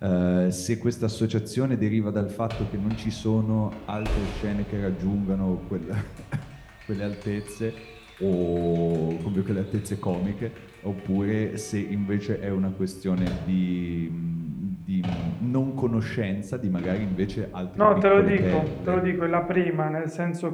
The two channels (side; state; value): both; identical; correlation 1.00